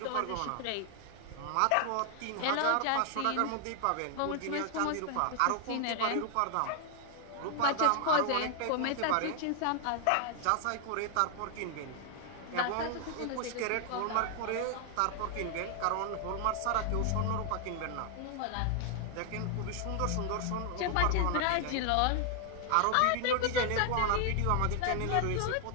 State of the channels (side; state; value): both; different; correlation 0.00